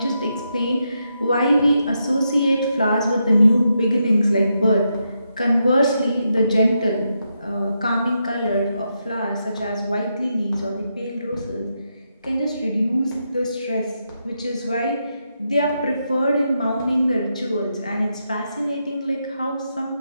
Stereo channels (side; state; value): both; inverted; correlation -0.83